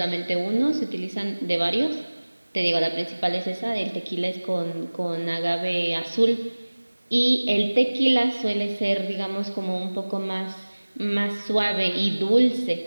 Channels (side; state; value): both; inverted; correlation -1.00